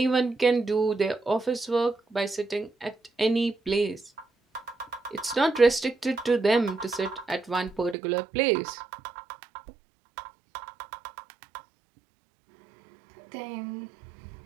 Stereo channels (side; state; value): left; drops out; at 8.0 s